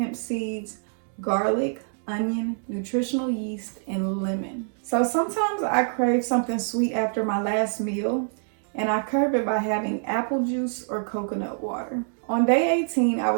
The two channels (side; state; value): left; silent; digital silence